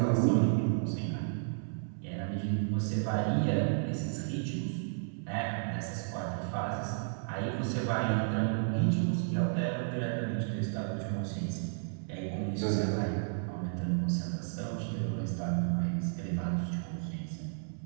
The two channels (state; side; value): silent; left; 56 dB below the other